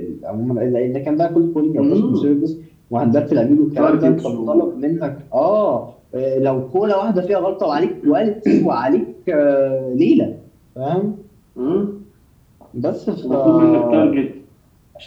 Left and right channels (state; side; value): identical; both; correlation 1.00